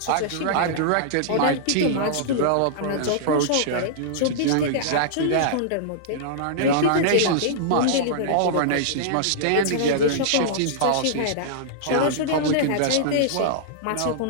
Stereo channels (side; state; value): both; different; correlation -0.02